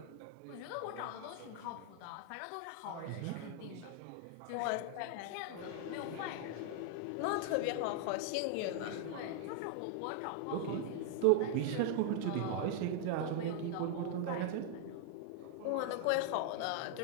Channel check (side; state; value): both; different; correlation 0.00